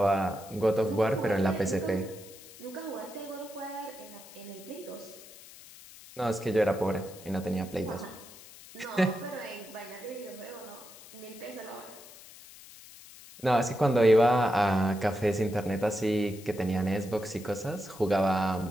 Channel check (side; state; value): left; noise; hiss, 19 dB below the sound